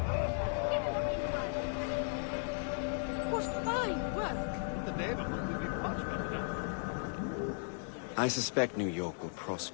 What fine work! The neighborhood will be much better now. I suspect New York will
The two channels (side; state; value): right; silent; 54 dB below the other